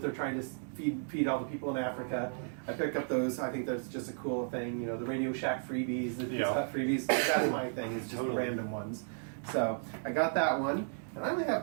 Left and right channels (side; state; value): left; silent; digital silence